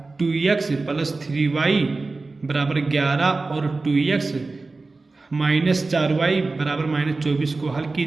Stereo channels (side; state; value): left; quieter; 3.6 dB